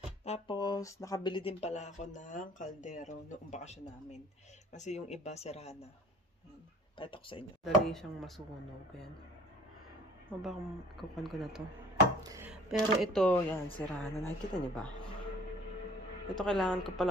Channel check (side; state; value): both; normal; correlation 0.50